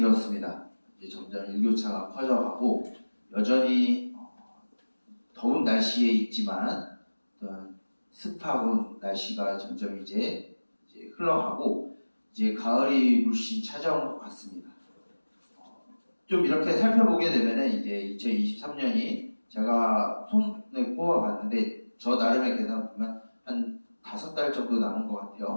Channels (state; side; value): inverted; both; correlation -1.00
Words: 이제 점점 일교차가 커져가고 여전히 더운 날씨에 있지만 어떤 습하고 날씨가 점점 이제 흘러가고 이제 가을이 물씬 찾아온 것 같습니다. 좀 이렇게 살펴보게 되면은 이제 2023년이 제가 손에 꼽아봤는데 저 나름의 계산 보면 한 5달 정도 남은 것